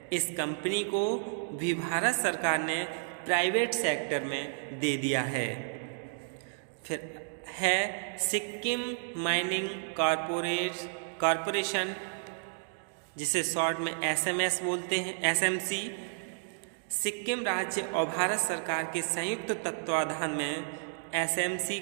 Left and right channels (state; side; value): silent; left; digital silence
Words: इस कंपनी को भी भारत सरकार ने प्राइवेट सेक्टर में दे दिया है। फिर है सिक्किम माइनिंग कॉरपोरेशन, जिसे शॉर्ट में SMS बोलते हैं, SMC। सिक्किम राज्य और भारत सरकार के संयुक्त तत्वाधान में SMC